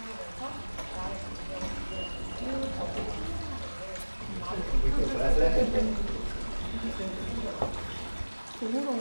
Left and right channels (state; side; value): inverted; both; correlation -1.00